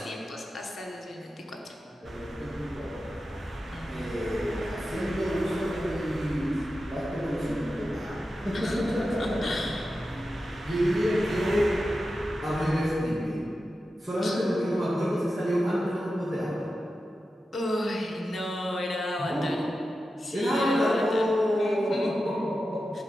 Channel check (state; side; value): normal; both; correlation 0.91